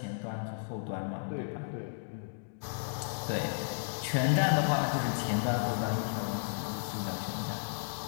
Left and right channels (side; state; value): right; silent; digital silence